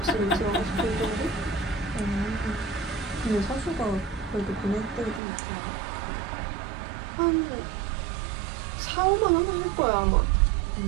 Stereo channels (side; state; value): left; drops out; at 5.2 s